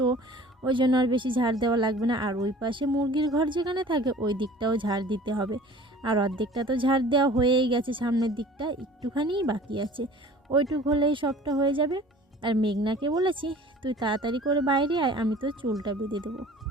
ওই জন্য আর বেশি ঝাড় দেওয়া লাগবে না। আর ওই পাশে মুরগির ঘর যেখানে থাকে ওই দিকটাও ঝাড় দিতে হবে। আর অর্ধেকটা তো ঝাড় দেওয়া হয়েই গেছে, সামনের দিকটা একটুখানিই বাকি আছে। ওইটুক হলেই সবটা হয়ে যাবে। আর মেঘনাকে বলেছি তুই তাড়াতাড়ি করে বাইরে আয়, আমি তো চুলটা বেঁধে দেবো।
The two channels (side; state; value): both; normal; correlation 0.46